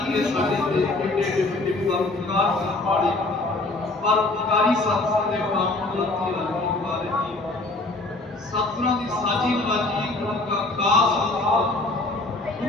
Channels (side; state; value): right; quieter; 3.0 dB